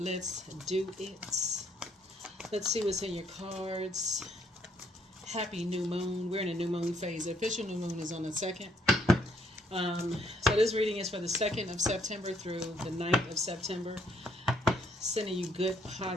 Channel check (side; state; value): both; normal; correlation 0.68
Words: do it. Let's see what's in your cards. Happy new moon. We're in a new moon phase. The official new moon is on the 2nd. So this reading is for the 2nd of September through the 9th of September. Sending you good,